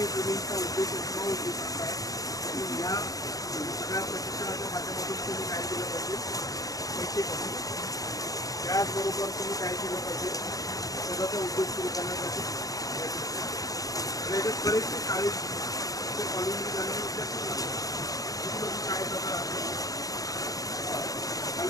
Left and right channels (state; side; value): late; right; 0.17 ms